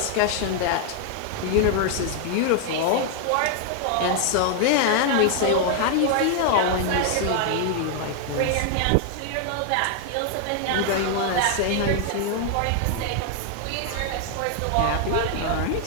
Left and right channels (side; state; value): both; different; correlation 0.00